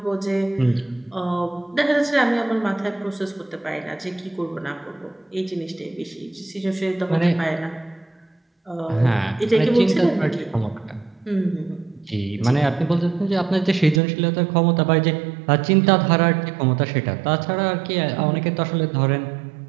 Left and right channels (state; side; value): drops out; left; at 14.0 s